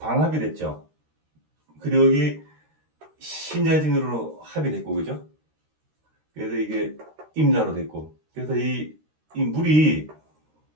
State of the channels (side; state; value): left; late; 13 ms